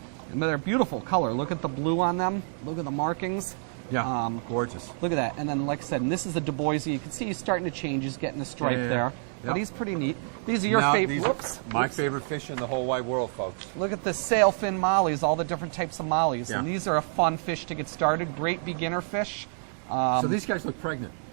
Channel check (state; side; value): silent; left; 59 dB below the other